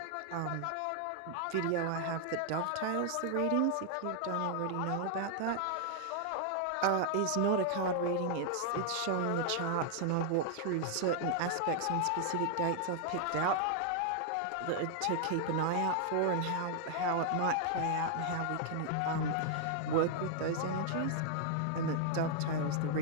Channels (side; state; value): both; different; correlation 0.00